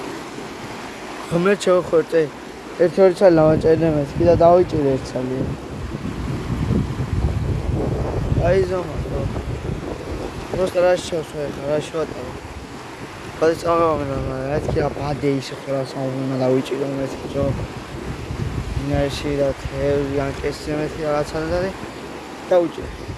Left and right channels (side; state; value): both; identical; correlation 1.00